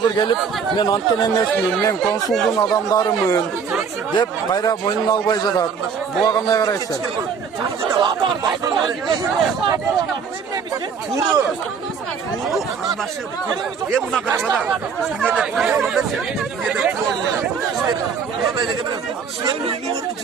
келип, мен анткен эмесмин, мен консулдун адамдарымын деп кайра мойнун албай жатат. Буга кандай карайсыздар? мына карабада.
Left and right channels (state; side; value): quieter; left; 6.3 dB